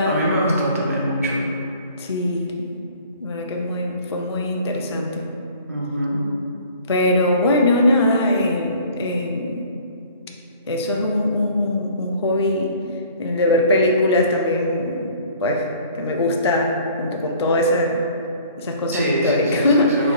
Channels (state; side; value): inverted; both; correlation -0.51